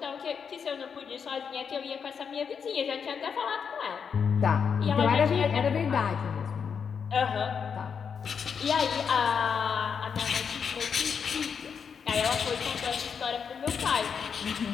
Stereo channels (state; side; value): quieter; right; 6.6 dB